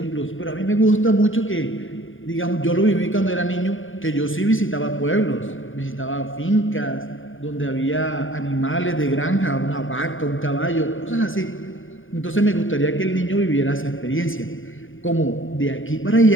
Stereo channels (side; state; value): right; late; 0.58 ms